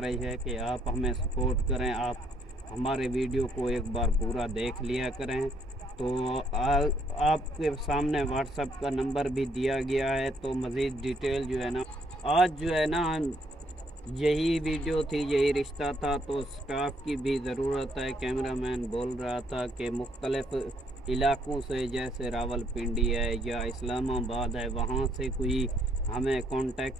है कि आप हमें सपोर्ट करें, आप हमारे वीडियो को एक बार पूरा देख लिया करें। तो आपके सामने व्हाट्सएप का नंबर भी दिया गया है, तो मज़ीद डिटेल जो है ना, आज जो है ना यही वीडियो थी, यही रिश्ता था। तो स्टाफ की भी ज़रूरत है। कैमरामैन बोल रहा था कि मुख्तलिफ़ इलाक़ों से, जैसे रावलपिंडी है या इस्लामाबाद है, वहाँ से कोई हमें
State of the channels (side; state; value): both; normal; correlation 0.70